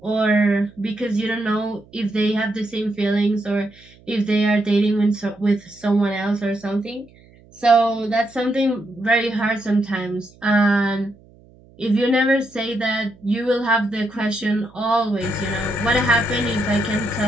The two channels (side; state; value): right; noise; hum, 27 dB below the sound